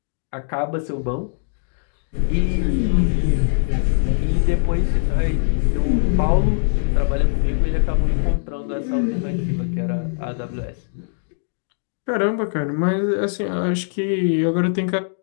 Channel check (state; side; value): silent; right; digital silence